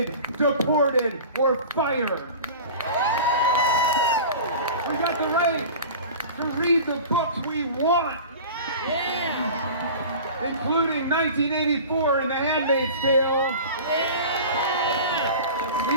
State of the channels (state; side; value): inverted; both; correlation -0.37